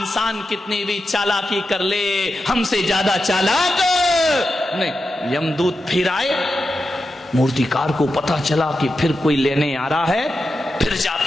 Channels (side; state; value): both; normal; correlation 0.90